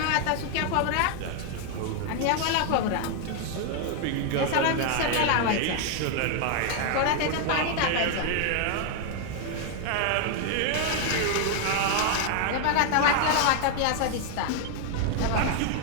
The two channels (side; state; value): both; different; correlation 0.00